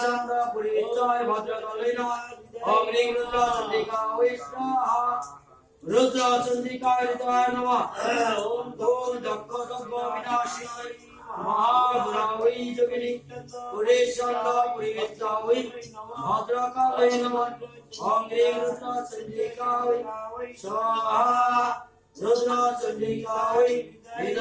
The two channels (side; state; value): both; identical; correlation 1.00